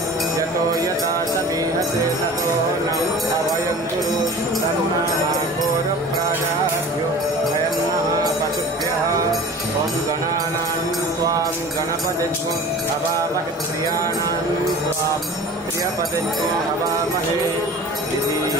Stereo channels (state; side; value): normal; both; correlation 0.40